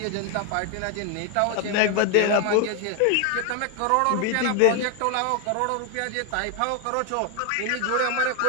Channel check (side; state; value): both; different; correlation 0.01